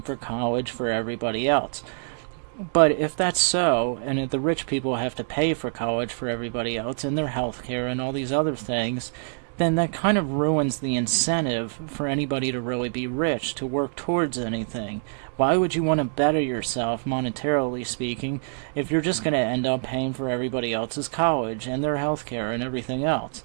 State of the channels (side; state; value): left; silent; 59 dB below the other